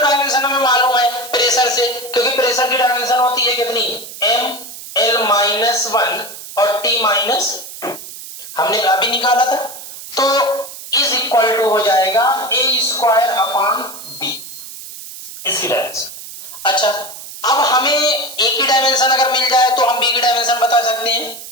हमें मालूम है प्रेशर से, क्योंकि प्रेशर की डायमेंशन होती है कितनी, m l -1 और t -2 हमने अभी निकाला था, तो इज इक्वल टू हो जाएगा a स्क्वायर अपान b, इसकी डायमेंशन। अच्छा, अब हमें a की डायमेंशन अगर मिल जाए तो हम b की डायमेंशन बता सकते हैं।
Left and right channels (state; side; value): noise; right; hiss, 13 dB below the sound